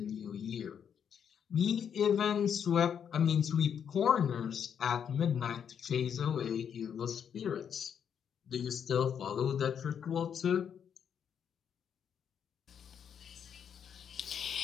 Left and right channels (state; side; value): quieter; right; 8.0 dB